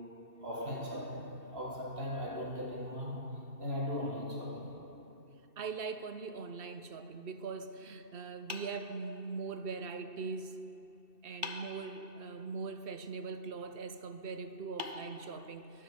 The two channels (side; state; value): left; late; 2.7 ms